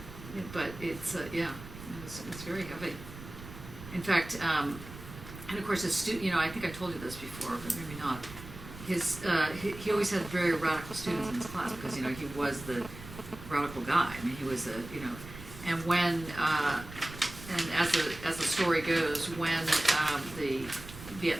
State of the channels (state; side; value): noise; right; rumble, 14 dB below the sound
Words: Yeah, but it's, yeah, it's very heavy. In fact, and of course, you know, I think I told you this before, but maybe not. He always had very radical students in his class because, you know, he was the radical guy. I mean, he was you know, and when, and as the story goes, when the